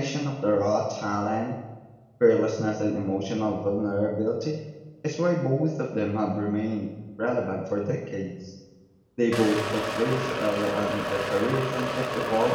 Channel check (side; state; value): both; identical; correlation 1.00